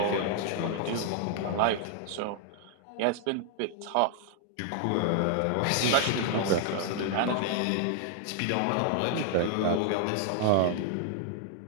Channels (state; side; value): different; both; correlation 0.00